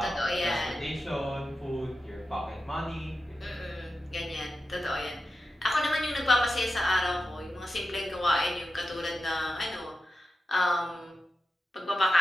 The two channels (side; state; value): both; normal; correlation 0.91